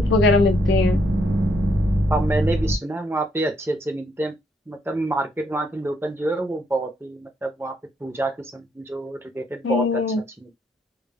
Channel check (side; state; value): both; normal; correlation 0.72